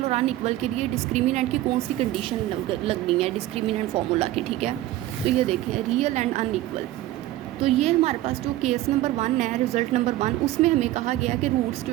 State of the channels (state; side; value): quieter; left; 15.4 dB